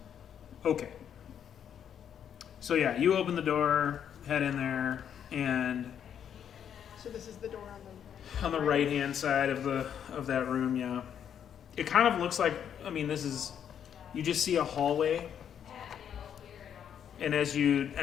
Okay. So yeah, you open the door, head in there, and So this is the door on the on the right hand side of that room, yeah. It kind of looks like, I mean, this is, you just see a hallway, and as you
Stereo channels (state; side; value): quieter; right; 8.8 dB